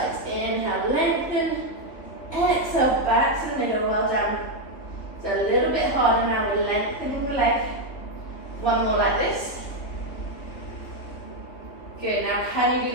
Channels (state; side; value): late; right; 3.4 ms